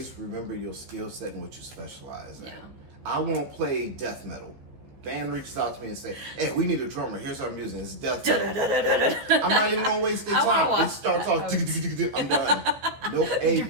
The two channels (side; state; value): left; late; 15 ms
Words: remember your skill set and what you specialize in. Yeah. I won't play death metal. Band reaches out to me and say, "Hey, we need a drummer. Here's our music. It's death metal." I'm not even gonna waste their time. It starts off. I'm done. Nope. Hey,